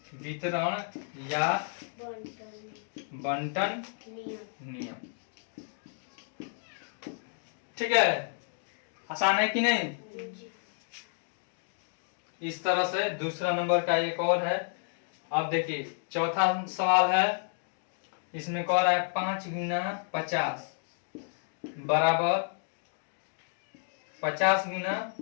वितरण या बंटन नियम, ठीक है। आसान है कि नहीं? इस तरह से दूसरा नंबर का एक और है। अब देखिए चौथा सवाल है। इसमें कह रहा है 5 गुना 50 बराबर 50 गुना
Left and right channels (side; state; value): right; silent; 57 dB below the other